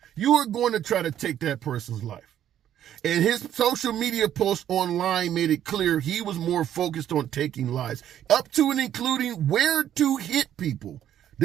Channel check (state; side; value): quieter; left; 10.8 dB